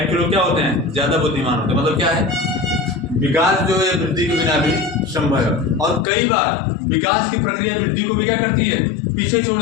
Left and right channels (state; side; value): drops out; right; at 6.1 s